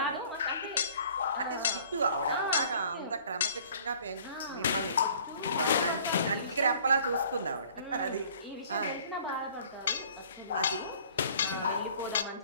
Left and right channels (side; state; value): both; inverted; correlation -0.52